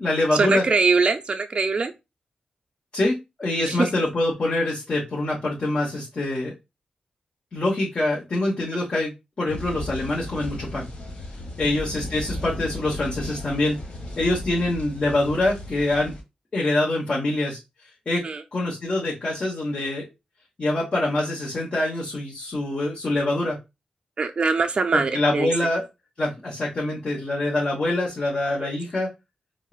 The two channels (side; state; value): both; normal; correlation 0.83